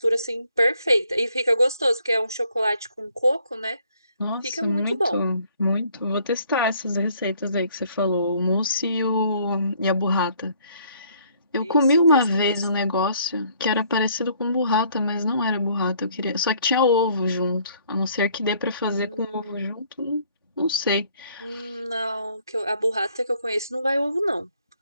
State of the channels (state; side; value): inverted; both; correlation -0.63